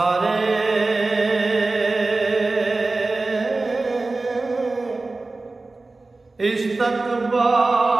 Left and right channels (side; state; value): left; quieter; 3.4 dB